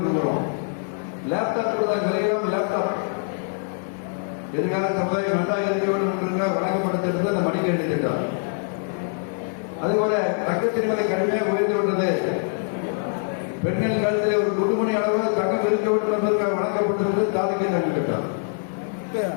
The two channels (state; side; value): silent; right; 63 dB below the other